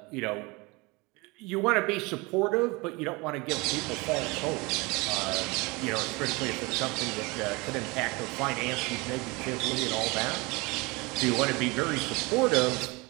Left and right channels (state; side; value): quieter; left; 25.5 dB